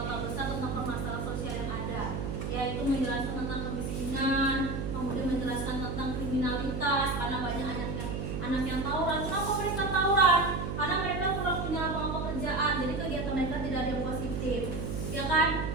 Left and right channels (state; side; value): noise; right; hum, 3 dB below the sound